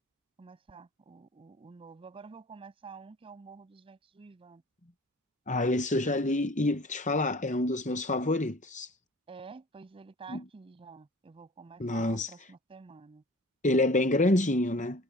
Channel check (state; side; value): normal; both; correlation 0.45